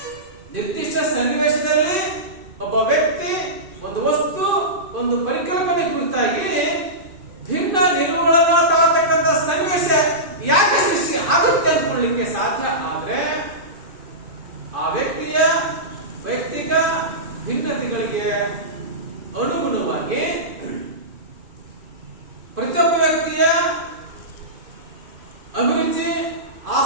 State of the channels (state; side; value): late; left; 2.5 ms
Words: ನಿರ್ದಿಷ್ಟ ಸನ್ನಿವೇಶದಲ್ಲಿ ಒಬ್ಬ ವ್ಯಕ್ತಿ ಒಂದು ವಸ್ತು, ಒಂದು ಪರಿಕಲ್ಪನೆ ಕುರಿತಾಗಿ ಭಿನ್ನ ನಿಲುವುಗಳನ್ನು ತಾಳತಕ್ಕಂಥ